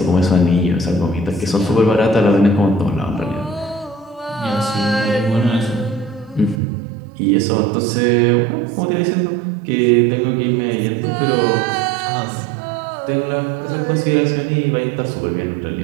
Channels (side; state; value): left; drops out; at 6.6 s